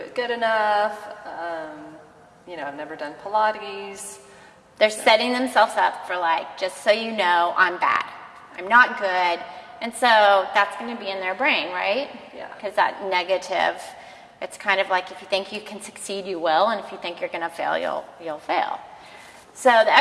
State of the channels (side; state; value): both; identical; correlation 1.00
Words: good enough, I've never done Pilates. They're setting themselves up for just so you know, I'm bad, I'm not good, and so that's going to be in their brain, right? Yeah. Because that negative, it's kind of like if you think you can succeed, you will, and if you think you're going to fail, you'll fail. So the